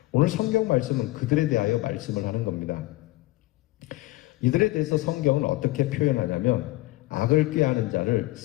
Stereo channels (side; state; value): right; quieter; 18.8 dB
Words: 오늘 성경 말씀은 그들에 대하여 말씀을 하는 겁니다. 이들에 대해서 성경은 어떻게 표현하냐면 악을 꾀하는 자를